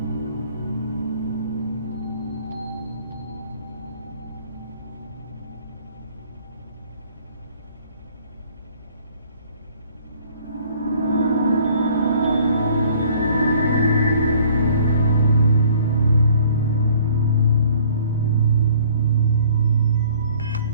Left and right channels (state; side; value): inverted; both; correlation -0.55